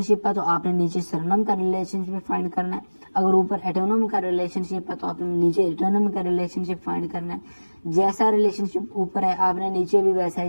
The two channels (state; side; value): inverted; both; correlation -1.00